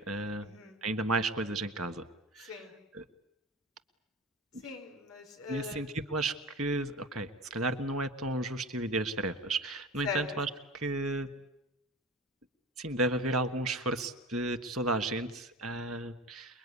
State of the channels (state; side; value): normal; both; correlation 0.33